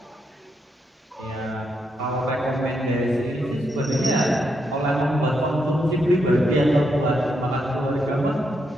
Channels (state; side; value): normal; both; correlation 0.80